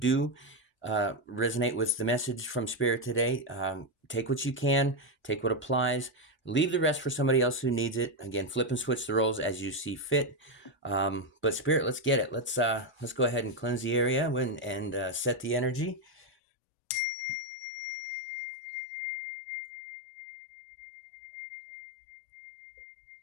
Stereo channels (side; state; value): right; drops out; at 16.2 s